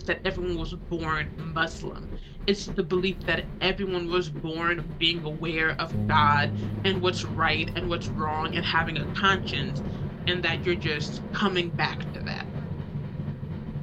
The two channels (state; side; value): identical; both; correlation 1.00